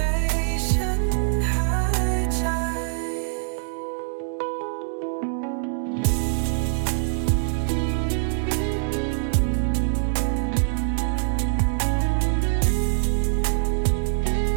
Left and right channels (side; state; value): left; silent; digital silence